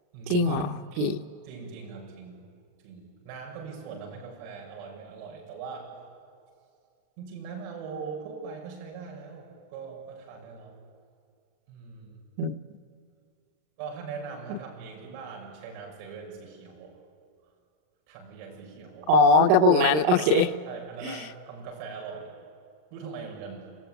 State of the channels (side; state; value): left; late; 39 ms